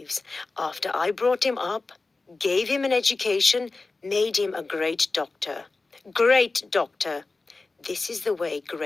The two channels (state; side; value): quieter; right; 3.6 dB